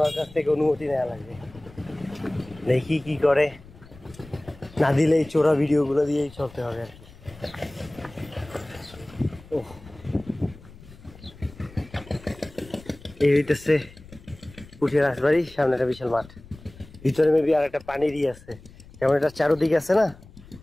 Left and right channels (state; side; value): noise; left; rumble, 21 dB below the sound